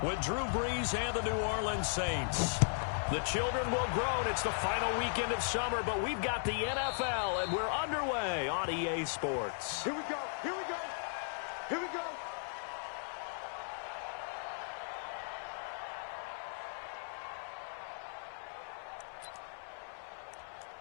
with Drew Brees and the New Orleans Saints. The children will groan. It's the final weekend of summer, but we've got the NFL, and we're underway on EA Sports. Here we go. Here we go. Here we go.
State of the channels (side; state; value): right; silent; 53 dB below the other